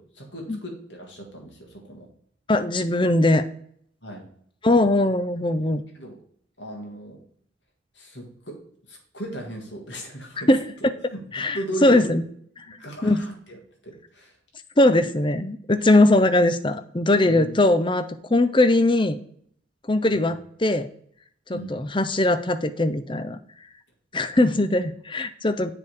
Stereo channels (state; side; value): normal; both; correlation 0.65